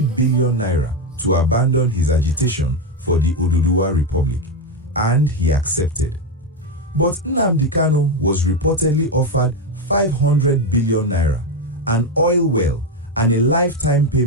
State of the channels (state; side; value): normal; both; correlation 0.09